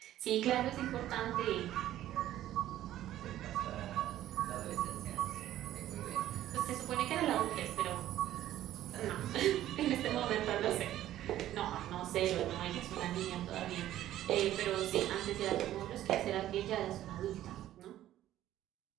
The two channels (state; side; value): quieter; left; 13.1 dB